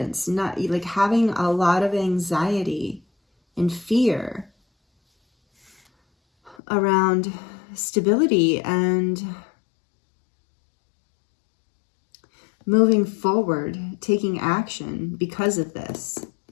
not like having a lot of anxiety and fear around stability and moving forward, taking action because of this.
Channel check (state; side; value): drops out; right; at 6.6 s